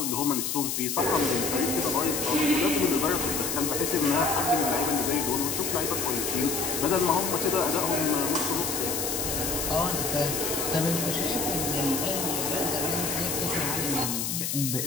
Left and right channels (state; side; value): noise; left; hiss, 1 dB below the sound